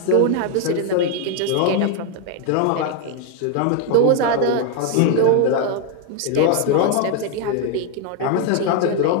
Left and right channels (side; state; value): both; different; correlation 0.01